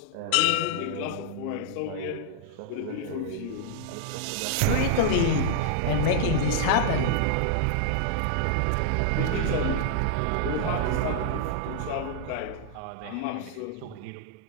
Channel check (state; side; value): different; both; correlation -0.01